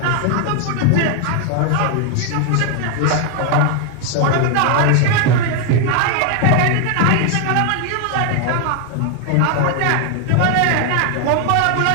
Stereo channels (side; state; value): both; different; correlation 0.00